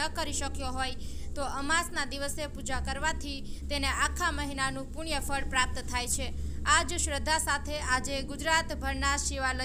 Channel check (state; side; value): identical; both; correlation 1.00